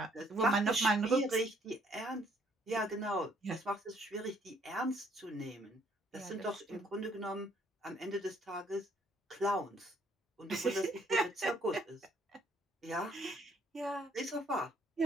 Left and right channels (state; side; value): normal; both; correlation 0.66